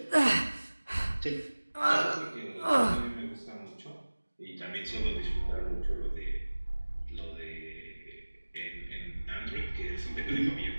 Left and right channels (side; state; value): both; inverted; correlation -1.00